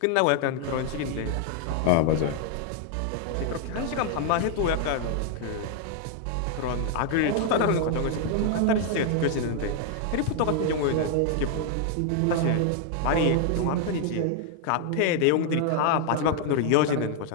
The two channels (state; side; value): different; both; correlation 0.00